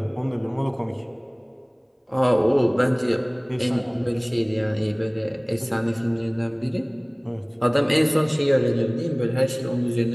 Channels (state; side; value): identical; both; correlation 1.00